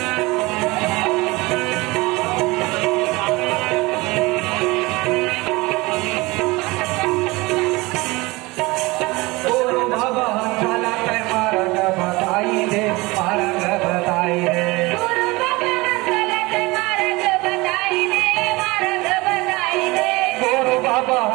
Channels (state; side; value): quieter; left; 22.8 dB